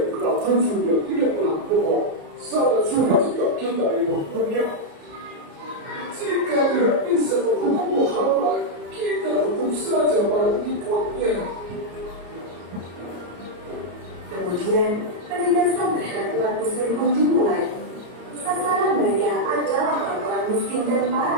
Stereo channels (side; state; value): left; late; 34 ms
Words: dikenal jujur dan tidak pernah bohong. Sangat sulit jika kita ingin menghukumnya. Jika tidak bisa menghukum Muhammad, kita hukum saja para pengikutnya. Kemudian, penindasan terhadap umat muslim pun dimulai. Sasaran mereka adalah orang miskin dan